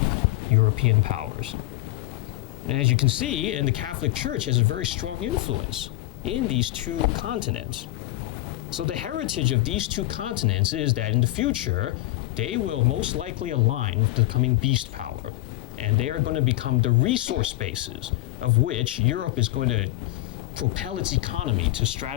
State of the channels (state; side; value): quieter; right; 17.7 dB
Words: European powers. And as you can see, and the Catholic Church has a very strong influence in these two continents. So the heritage of these two continents is that in the future, they will most likely align with the coming beast power. And they are going to become the resource bases of which Europe is going to propel its economy to